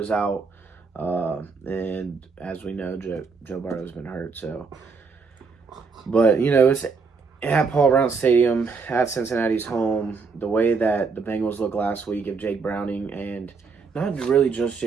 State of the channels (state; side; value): quieter; left; 4.8 dB